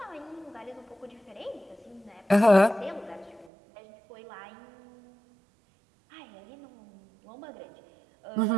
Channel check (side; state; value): left; drops out; at 3.5 s